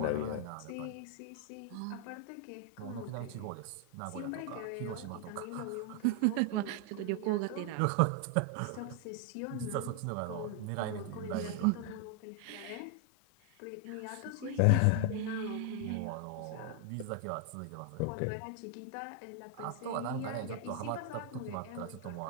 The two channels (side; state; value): both; different; correlation 0.00